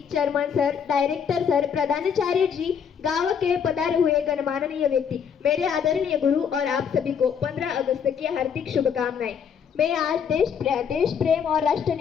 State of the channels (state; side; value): quieter; right; 7.3 dB